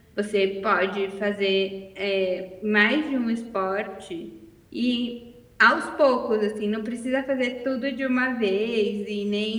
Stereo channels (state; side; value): identical; both; correlation 1.00